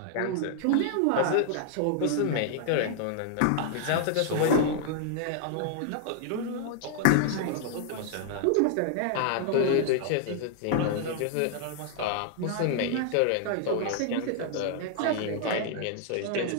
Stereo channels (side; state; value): both; different; correlation 0.00